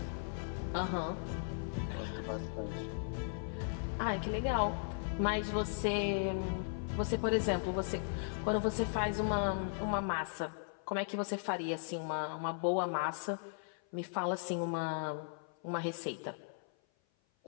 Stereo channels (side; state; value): right; silent; 53 dB below the other